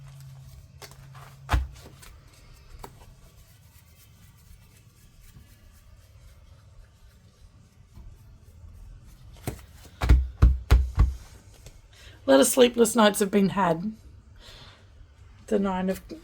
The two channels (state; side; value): identical; both; correlation 1.00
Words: A lot of sleepless nights have been had. The Nine of